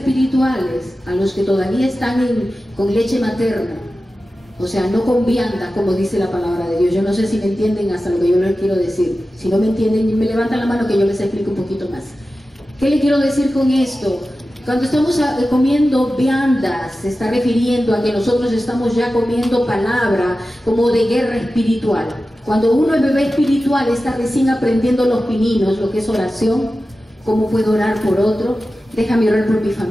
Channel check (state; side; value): normal; both; correlation 0.94